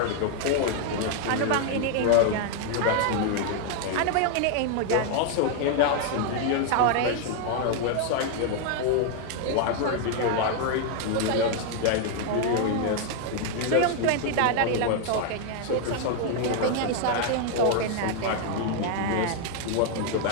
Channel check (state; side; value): different; both; correlation 0.00